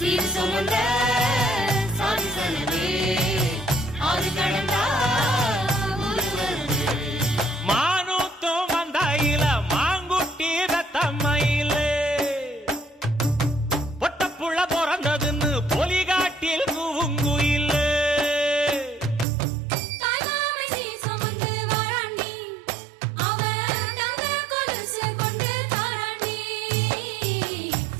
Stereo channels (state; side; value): drops out; left; at 19.2 s